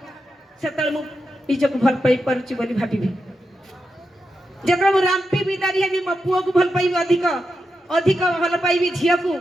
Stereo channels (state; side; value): normal; both; correlation 0.87